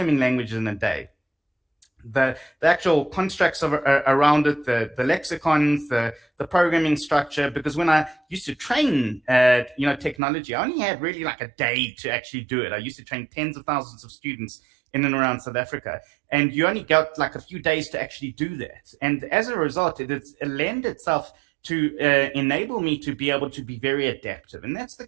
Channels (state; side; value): drops out; left; at 10.2 s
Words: language in a day. The actual constructs around it, the lexicons, the programming structure. Because when I used to train, technology, I only had really like a day to actually do it. I used to train tens of thousands of students in and around South Africa, and you only got like a few days to actually do that. And as a result, it lent itself to enable me to be able to be very adaptive, and that's the